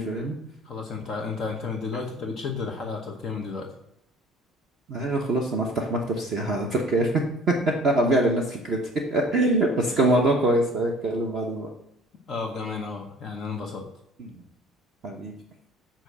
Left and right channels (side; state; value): both; normal; correlation 0.48